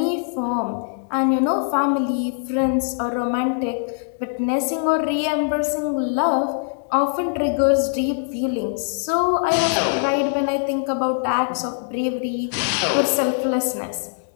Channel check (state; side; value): silent; right; digital silence